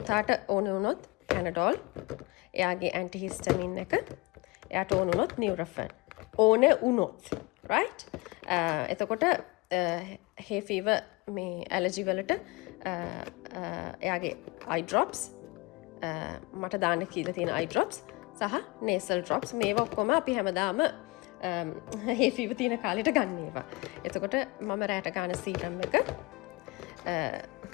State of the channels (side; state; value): right; quieter; 25.3 dB